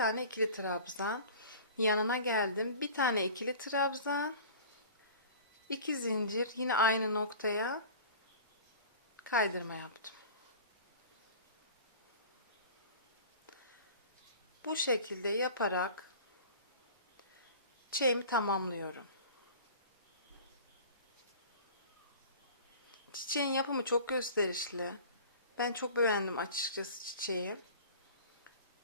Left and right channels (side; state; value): both; inverted; correlation -0.41